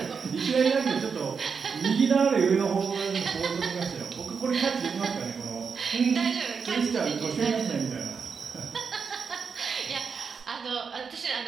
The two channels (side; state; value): left; quieter; 5.8 dB